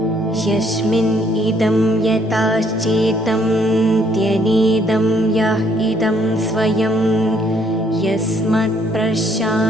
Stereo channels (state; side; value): normal; both; correlation 0.66